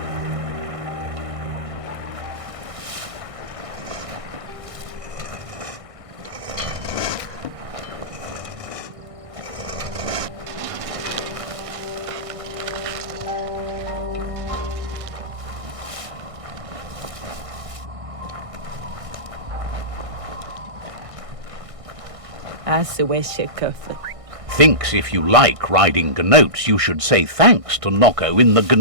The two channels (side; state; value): left; late; 1.6 ms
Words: Thinks if you like riding gnotes, you should say thanks to Nocco in the